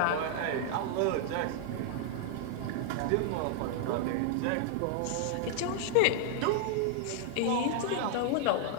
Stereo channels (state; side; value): different; both; correlation 0.00